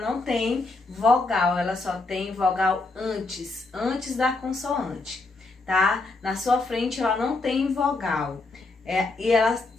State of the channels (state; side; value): quieter; right; 3.4 dB